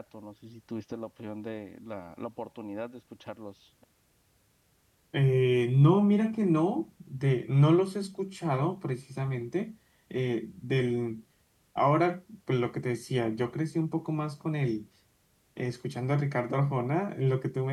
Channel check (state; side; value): identical; both; correlation 1.00